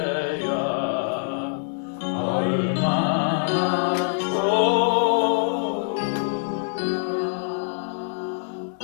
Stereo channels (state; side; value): silent; right; digital silence